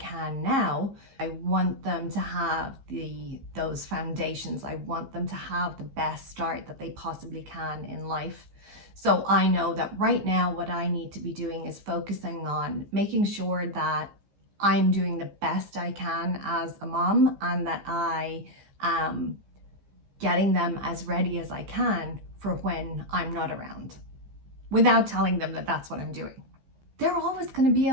now. I want them to have those foundations. I want them to have the best start that they possibly can in life. So I know that right now what I need to be doing is focusing on making sure that I'm doing the best I can as a mom, and that I am getting them as ready as I can for when I'm not around, without telling them that that's what I'm doing. They're always going to be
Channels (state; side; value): late; left; 15 ms